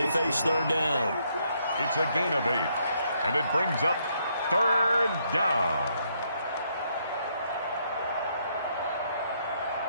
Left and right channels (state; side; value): inverted; both; correlation -0.73